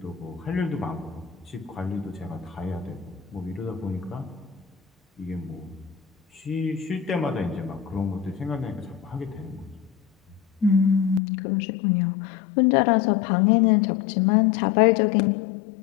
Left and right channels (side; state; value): right; drops out; at 11.2 s